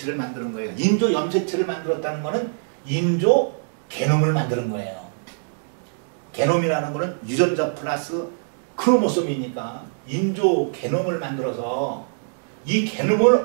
만드는 거예요. 인조 염색체를 만들었다는 거는 인조 게놈을 만드는 거예요. 게놈이라는 거는 유전자 플러스 크로모솜이니까 인조 게놈을 만들어서 이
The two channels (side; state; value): left; silent; digital silence